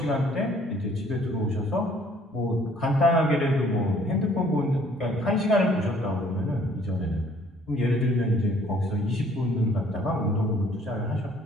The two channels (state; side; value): normal; both; correlation 0.60